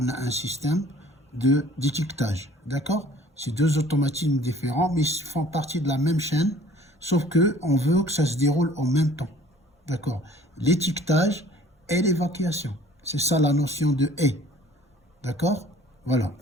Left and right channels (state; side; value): normal; both; correlation 0.52